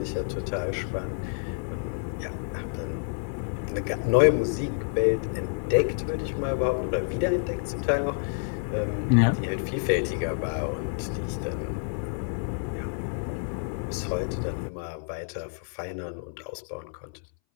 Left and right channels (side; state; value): right; silent; 59 dB below the other